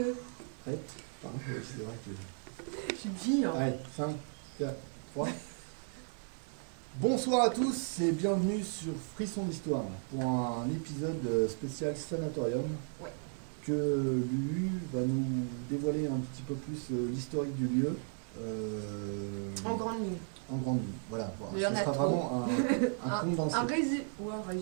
Pardon, c'est vrai que... J'ai une vie, hein. Allez, 5, 4, 3. Bonsoir à tous et bienvenue sur Frisson d'Histoire pour un épisode spécial Sanatorium. Ouais. Que Lulu va nous dévoiler un petit peu plus l'historique du lieu. En grande ligne. En grande ligne, voilà. Mais ça sera vraiment un condensé. Un résumé.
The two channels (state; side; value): silent; left; 54 dB below the other